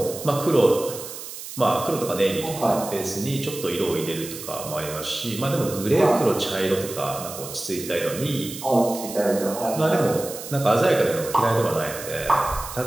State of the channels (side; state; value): right; noise; hiss, 11 dB below the sound